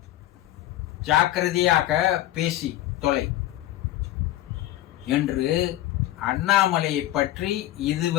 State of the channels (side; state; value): right; quieter; 14.6 dB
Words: ஜாக்கிரதையாக பேசி தொலை என்று அண்ணாமலையை பற்றி